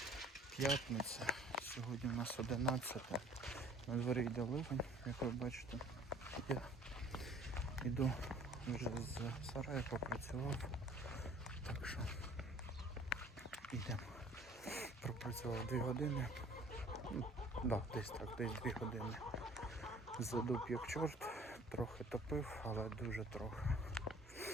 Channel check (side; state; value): both; normal; correlation 0.52